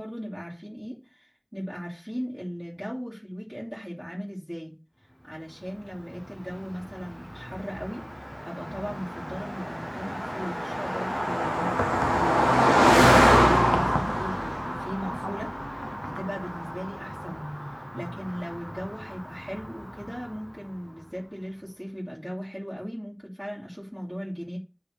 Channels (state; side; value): identical; both; correlation 1.00